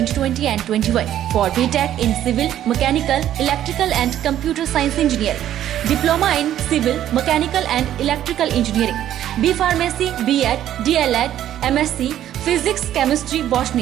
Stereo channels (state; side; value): quieter; left; 11.6 dB